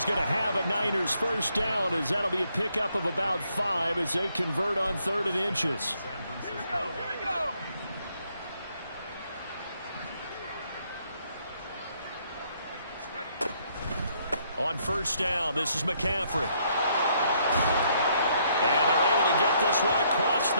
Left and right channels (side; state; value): both; inverted; correlation -0.70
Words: going to have a Niners first down, as that'll be a pickup of about 5 as they convert on third and inches. On first down, this is McCaffrey. And they're able to get this one across the